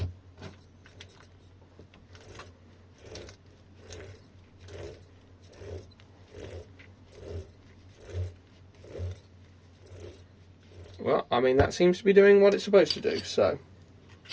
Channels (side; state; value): both; identical; correlation 1.00